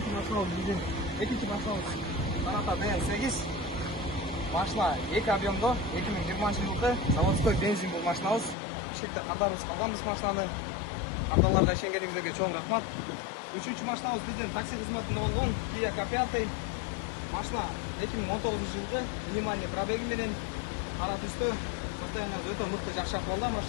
машинабыз биздин Саната ДМ8. Машина 2 объемдо 2020 жылы заводской бензин бул машинабыз. Бишкекте картарыбыз калганбыз машинаны. Карталарда ишенгениңиздерге чоң рахмат. Үчүнчү машинабыз биздин такси кызматында болгон Kia K5. Машина 2019 жылы минимальный пробеги менен ара түстө состояниясы өтө мыкты, жакшы акыбалда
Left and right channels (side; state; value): right; drops out; at 8.6 s